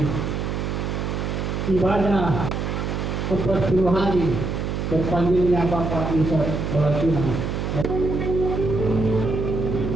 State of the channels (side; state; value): right; noise; hum, 2 dB below the sound